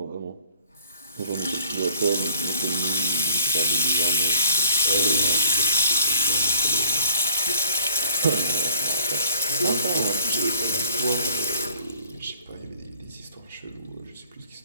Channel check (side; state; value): both; inverted; correlation -0.56